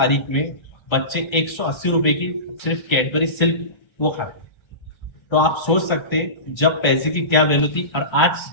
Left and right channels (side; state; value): right; late; 1.3 ms